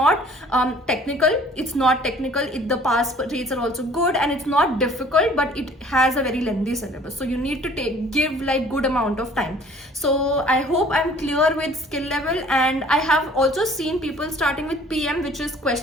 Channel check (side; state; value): both; normal; correlation 0.53